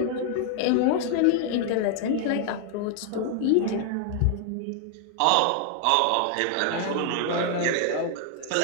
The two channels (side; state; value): both; different; correlation 0.00